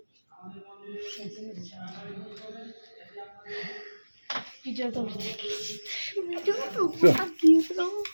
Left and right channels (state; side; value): inverted; both; correlation -1.00